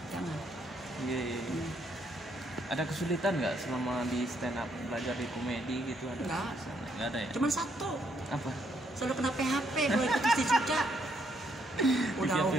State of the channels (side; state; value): both; normal; correlation 0.73